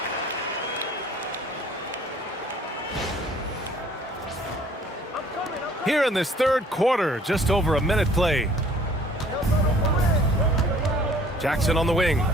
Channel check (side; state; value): both; normal; correlation 0.55